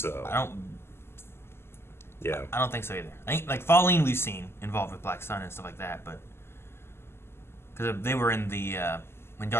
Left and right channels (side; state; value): right; late; 0.12 ms